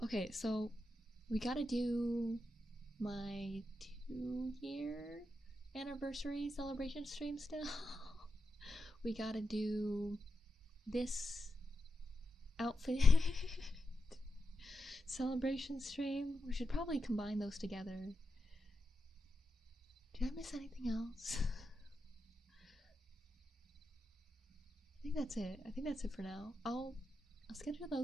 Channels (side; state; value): both; normal; correlation 0.88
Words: Okay, so we gotta do my 2-year anniversary celebration stream still. We gotta do this outfit celebration stream. We should probably combine those together. Did I miss anything else? I think that's it. I think that's it for now. I'll schedule